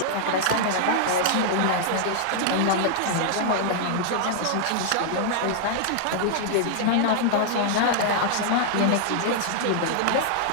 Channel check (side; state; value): both; different; correlation -0.01